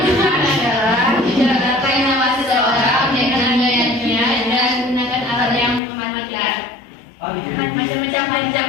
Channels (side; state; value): right; drops out; at 5.8 s